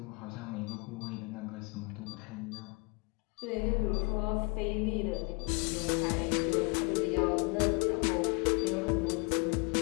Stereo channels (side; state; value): right; quieter; 31.3 dB